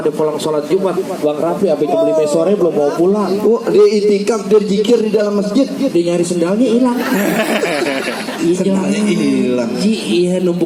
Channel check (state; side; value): identical; both; correlation 1.00